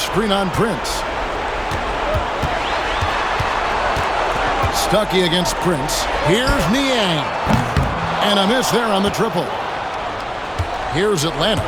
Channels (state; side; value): identical; both; correlation 1.00